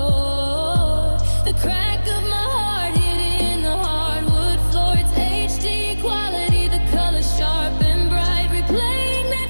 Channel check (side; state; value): both; inverted; correlation -1.00